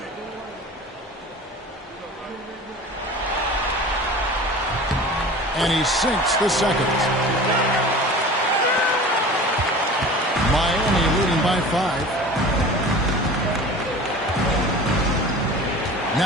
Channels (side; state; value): both; normal; correlation 0.38